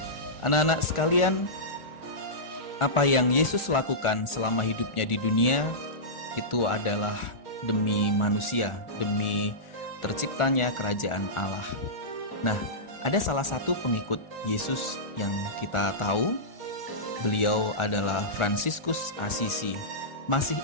Anak-anak sekalian, apa yang Yesus lakukan selama hidupnya di dunia itu adalah demi manusia, demi terciptanya kerajaan Allah. Nah, ada salah satu pengikut Yesus yang kita tahu, beliau adalah Fransiskus Assisi. Masih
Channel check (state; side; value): late; right; 1.4 ms